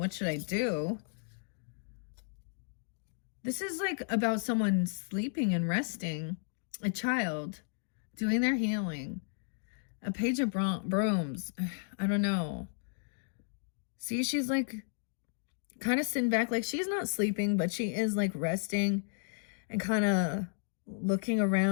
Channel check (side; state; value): right; silent; digital silence